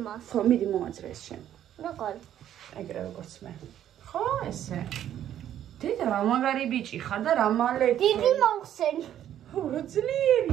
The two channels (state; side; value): quieter; left; 11.0 dB